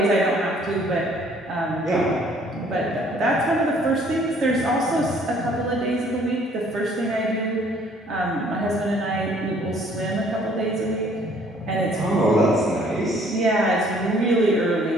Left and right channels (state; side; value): normal; both; correlation 0.59